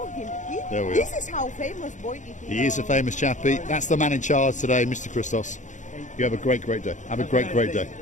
him. There we This are. is how famous boy it is. He is a famous chappie. That's the man in charge today, Mr. Christos. You have a great day. Have a great day.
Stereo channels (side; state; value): right; late; 0.36 ms